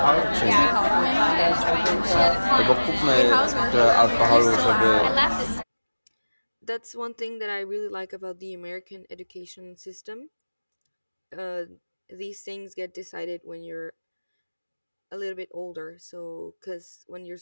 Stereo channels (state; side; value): inverted; both; correlation -1.00